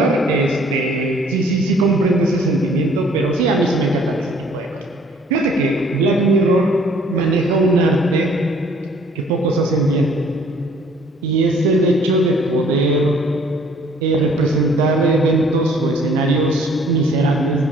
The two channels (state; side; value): normal; both; correlation 0.58